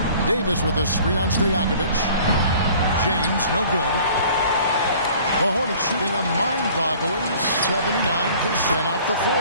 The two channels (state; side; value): inverted; both; correlation -0.50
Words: Davis with a screen on Stojakovic. James, no good. The Hornets shooting a mind-boggling 79% off the